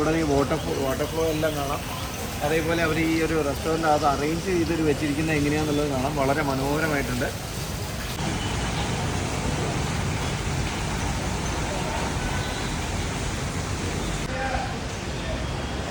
ഇവിടെ ഈ വാട്ടർ ഫ്ലോ എല്ലാം കാണാം. അതേപോലെ അവർ ഈ ഒരു റെസ്റ്റോറൻറ്റ് അത് അറേഞ്ച് ചെയ്തിട്ട് വെച്ചിരിക്കുന്നത് എങ്ങനെയാണെന്നുള്ളത് കാണാം. വളരെ മനോഹരമായിട്ടുണ്ട്.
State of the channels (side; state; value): both; identical; correlation 1.00